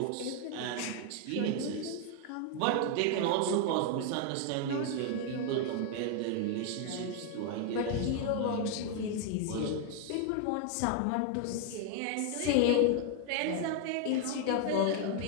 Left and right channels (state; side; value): different; both; correlation 0.00